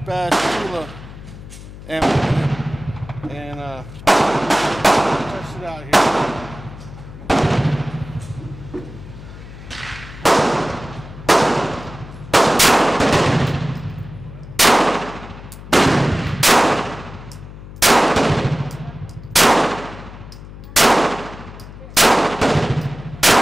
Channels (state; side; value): noise; left; hum, 15 dB below the sound